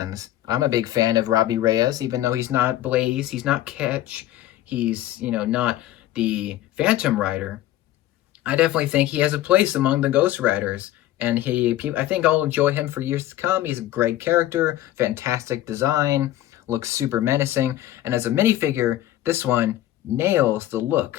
I'm a big fan of Robbie Reyes, even though he's not Blaze, he's not Catch, he's, not the Phantom Rider. I definitely think he has a place among the Ghost Riders, and I think I'll enjoy him for years to come. He's a great character, fantastic design, looks super menacing, and as a minifigure, this one nails the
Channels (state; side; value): quieter; right; 14.0 dB